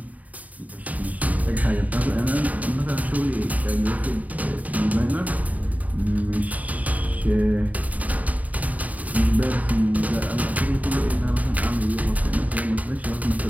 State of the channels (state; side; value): late; left; 0.073 ms